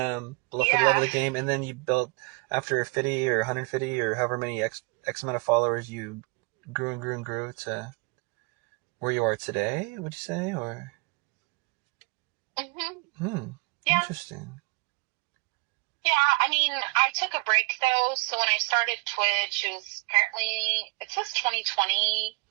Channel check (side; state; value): left; quieter; 29.1 dB